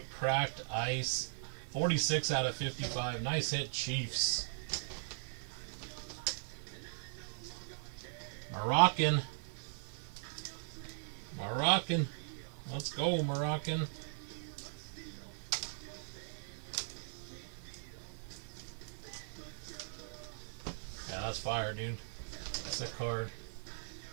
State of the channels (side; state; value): left; silent; 52 dB below the other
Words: cracked ice. 46 out of 55. Nice hit, Chiefs. Moroccan. Moroccan. Let's go, Moroccan. Yeah, that's fire, dude. Sick card.